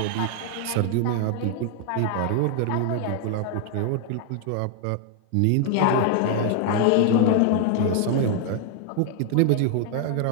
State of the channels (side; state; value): both; different; correlation 0.00